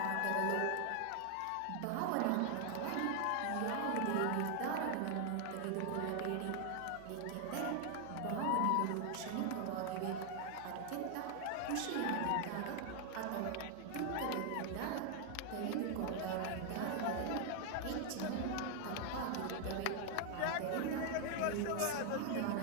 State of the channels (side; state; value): both; different; correlation 0.00